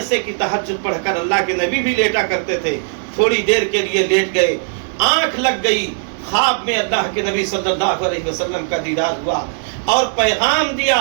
से कि तहज्जुद पढ़कर अल्लाह के नबी भी लेटा करते थे, थोड़ी देर के लिए लेट गए, आंख लग गई, ख्वाब में अल्लाह के नबी सल्लल्लाहु अलैहि वसल्लम का दीदार हुआ और पैगाम दिया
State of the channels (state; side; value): silent; left; 65 dB below the other